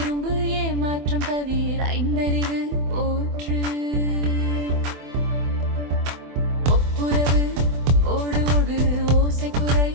ஏமாற்றம் தவிர ஐந்தறிவு போற்று ஒப்புரவு ஓடு ஓடு ஓசைக்குறை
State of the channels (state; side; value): late; left; 24 ms